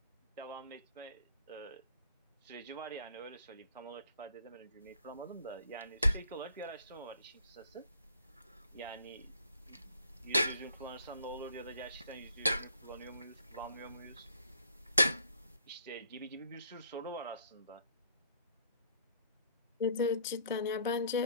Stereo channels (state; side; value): inverted; both; correlation -0.60